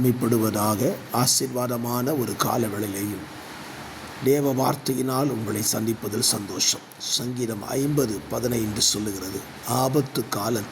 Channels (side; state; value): both; identical; correlation 1.00